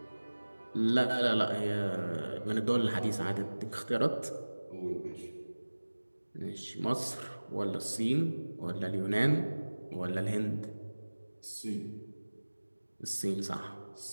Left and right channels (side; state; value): both; inverted; correlation -1.00